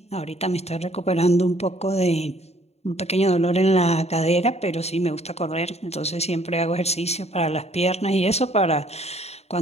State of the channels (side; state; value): right; late; 0.31 ms